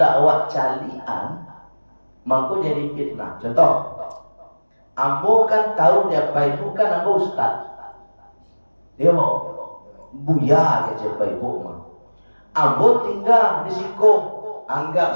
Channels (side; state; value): both; inverted; correlation -1.00